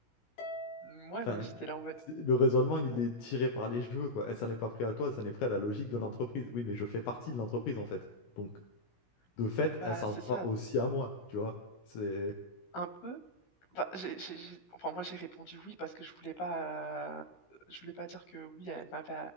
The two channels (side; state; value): right; late; 17 ms